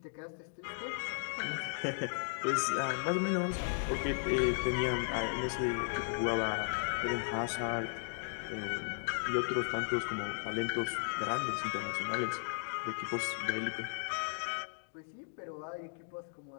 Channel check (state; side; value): silent; right; digital silence